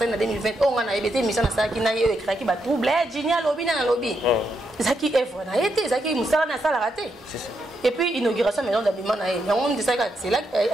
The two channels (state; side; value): normal; both; correlation 0.81